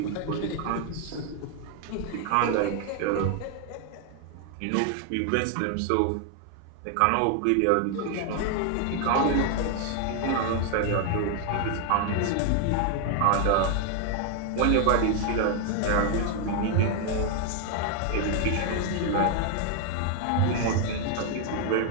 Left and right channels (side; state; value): both; different; correlation 0.00